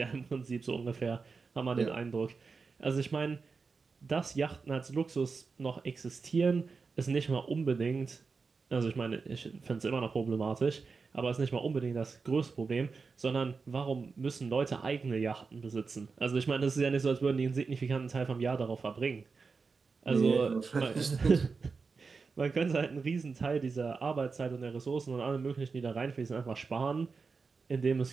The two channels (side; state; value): left; quieter; 4.7 dB